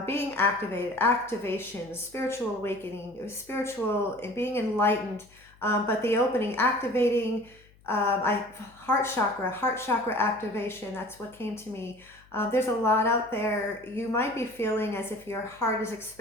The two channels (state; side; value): noise; left; hum, 28 dB below the sound